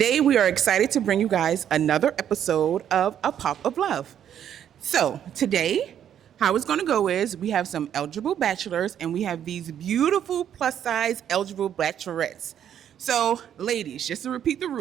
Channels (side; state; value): left; quieter; 9.7 dB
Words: we are excited to bring you guys another episode of A Pop of Love. So today, how it's going to go is we have some eligible bachelors and we have these beautiful plus size eligible bachelorettes. So ladies, just to repeat the